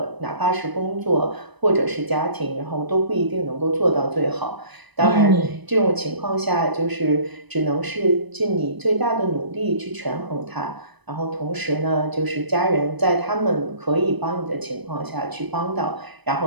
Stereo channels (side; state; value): left; late; 1.0 ms